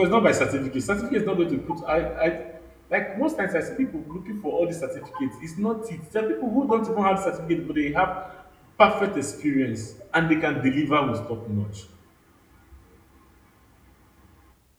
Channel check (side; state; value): both; identical; correlation 1.00